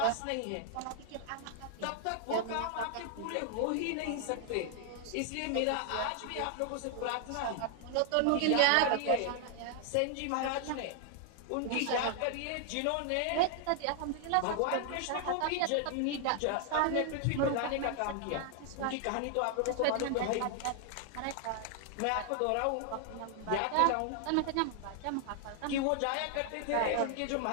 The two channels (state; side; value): different; both; correlation 0.00